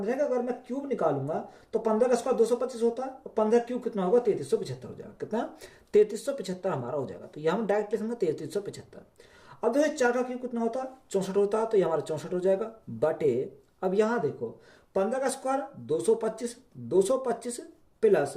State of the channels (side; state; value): both; identical; correlation 1.00